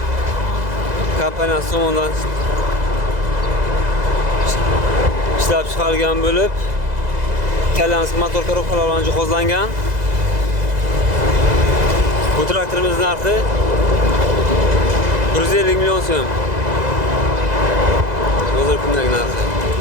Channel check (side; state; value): left; late; 2.0 ms